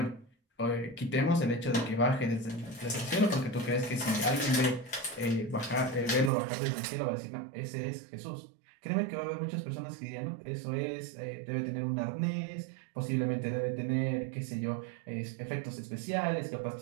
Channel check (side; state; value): left; drops out; at 6.3 s